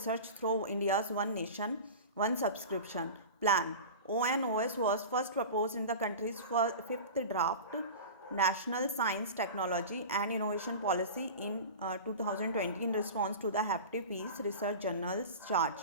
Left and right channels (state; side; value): inverted; both; correlation -0.32